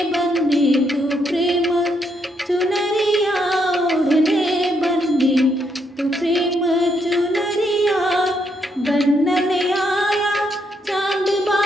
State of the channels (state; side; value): normal; both; correlation 0.76